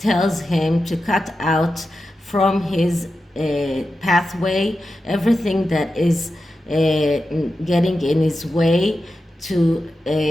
him to cut out from his pathway everything that is getting in his way to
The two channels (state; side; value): normal; both; correlation 0.91